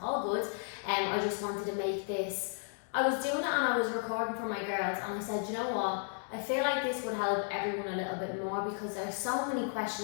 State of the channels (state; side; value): silent; right; 55 dB below the other